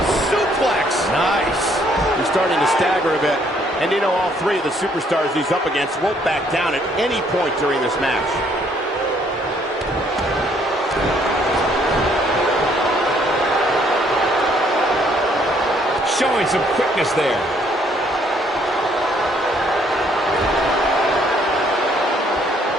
suplex. Nice. He's starting to stagger a bit. And you know, all three of the superstars he's up against won't back down at any point during this match. Showing some quickness there.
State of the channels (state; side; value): normal; both; correlation 0.66